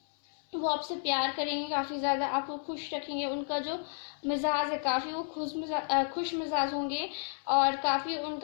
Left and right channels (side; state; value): right; silent; 57 dB below the other